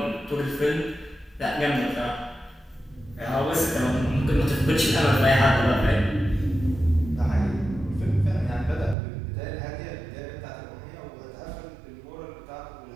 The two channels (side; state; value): left; drops out; at 9.0 s